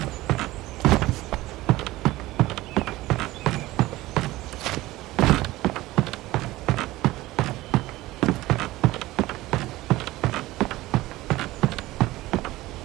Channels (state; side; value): quieter; left; 17.9 dB